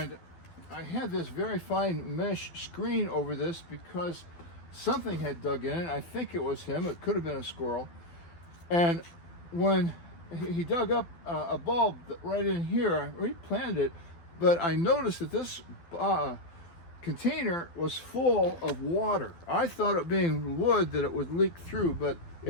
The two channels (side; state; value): right; late; 12 ms